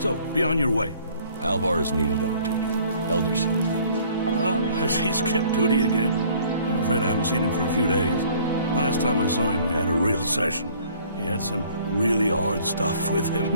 be on your way. Alvar is needed on duty. Elder sent me. Has he skipped duty again? I'm afraid I haven't seen him for a few days. Last time I saw him, we had a real session. He had some really hard stuff with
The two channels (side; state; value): both; inverted; correlation -0.56